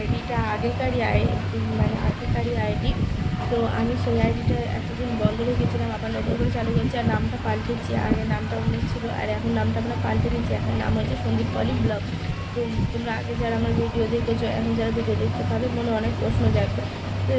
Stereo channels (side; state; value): both; identical; correlation 1.00